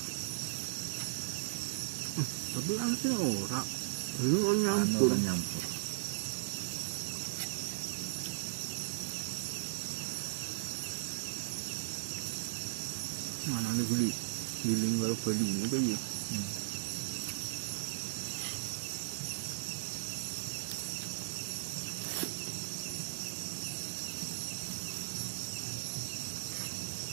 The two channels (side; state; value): left; silent; 53 dB below the other